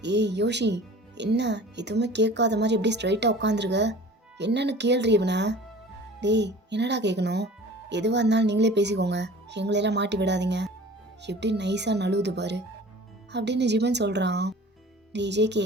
ஏய் யோஷி, என்ன எதுவுமே கேட்காத மாதிரி எப்படி ஸ்ட்ரைட்டாக உட்காந்துருக்க? என்னன்னு கேள்றி இவனை. டேய் என்னடா கேட்கணும்? எதுவாக இருந்தாலும் நீங்களே பேசிக்கோங்க, எங்களையெல்லாம் மாட்டி விடாதீங்க. எப்படி நைஸாக நழுவுது பாரு அப்படின்னு ஜிமன் சொல்கிறான். டேய் ஜேகே,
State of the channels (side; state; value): both; normal; correlation 0.43